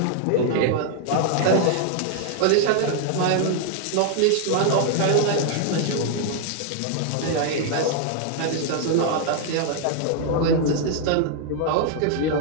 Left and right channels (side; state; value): both; different; correlation 0.00